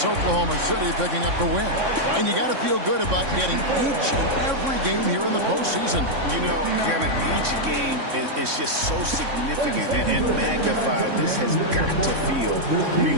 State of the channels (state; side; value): late; left; 3.6 ms